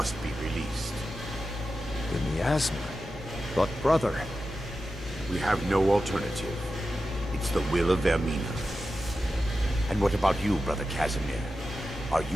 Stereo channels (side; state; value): both; normal; correlation 0.92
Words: be released. The miasma? But brother... We have no alternative. It's the will of Vermina. And what about you, Brother Casimir? Are